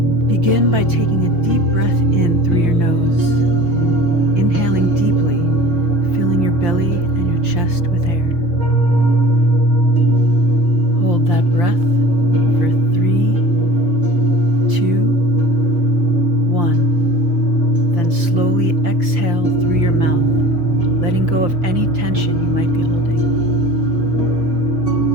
Begin by taking a deep breath in through your nose, inhaling deeply, filling your belly and your chest with air. Hold that breath for 3, 2, 1. Then slowly exhale through your mouth, letting go of any tension you might be holding.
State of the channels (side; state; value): left; late; 5.8 ms